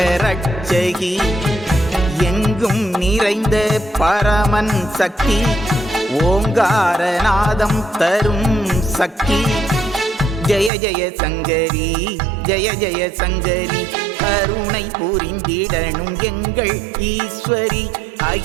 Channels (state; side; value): drops out; left; at 10.7 s